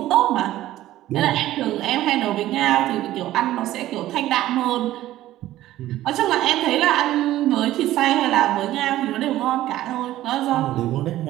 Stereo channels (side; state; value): left; quieter; 14.5 dB